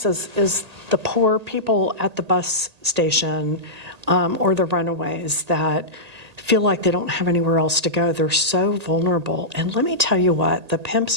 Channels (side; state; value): left; late; 1.8 ms